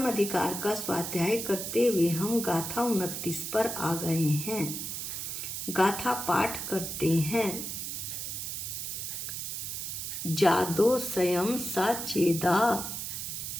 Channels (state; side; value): noise; right; hiss, 5 dB below the sound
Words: अधिकार का स्वाध्याय करते हुए हम गाथा 29 पर आ गए हैं। गाथा पाठ करते हैं। जादो स्वयं साचेदा